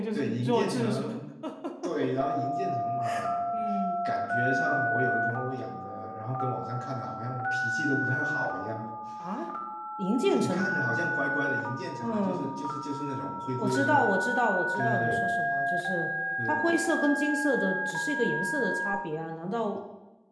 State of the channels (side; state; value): both; identical; correlation 1.00